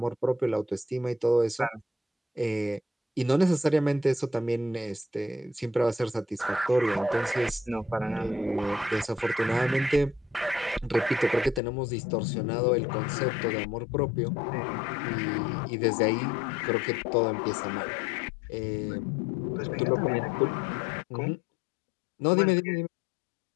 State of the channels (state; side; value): drops out; right; at 11.6 s